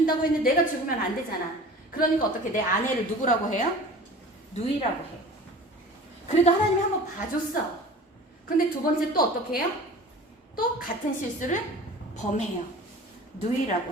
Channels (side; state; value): both; normal; correlation 0.41